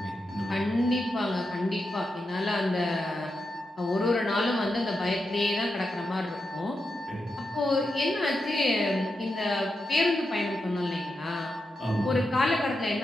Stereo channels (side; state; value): both; normal; correlation 0.87